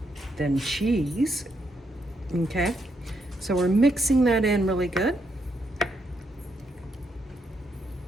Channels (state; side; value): normal; both; correlation 0.78